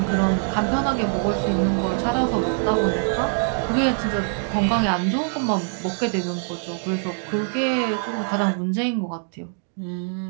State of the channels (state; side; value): silent; left; 63 dB below the other